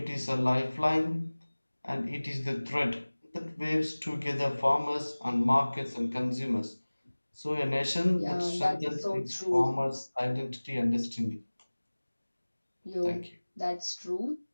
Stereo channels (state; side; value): inverted; both; correlation -1.00